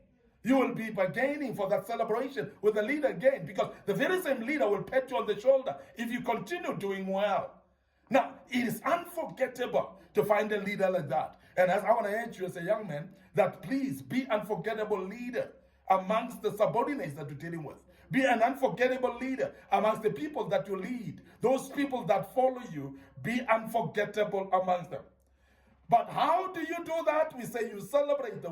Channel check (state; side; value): identical; both; correlation 1.00